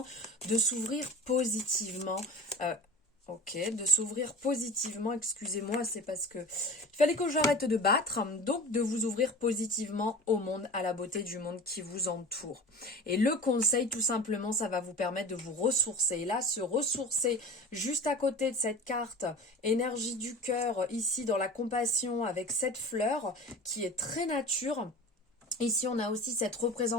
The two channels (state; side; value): normal; both; correlation 0.36